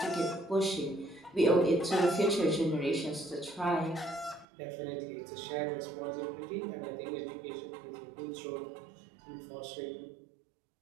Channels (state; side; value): drops out; left; at 4.5 s